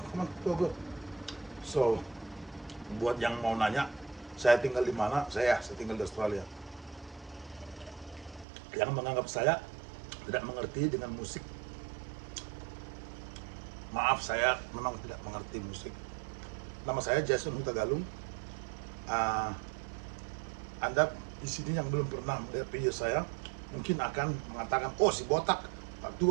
come on, go go. So, buat yang mau nanya, saya tinggal di mana? Saya tinggal di Australia. Yang menganggap saya tidak mengerti dengan musik, maaf, saya memang tidak mengerti musik. Nama saya Jason Huta Galung. Ah, Anda di sini yang belum pernah melihat video saya, mungkin akan mengatakan, oh si botak,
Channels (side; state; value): left; drops out; at 8.5 s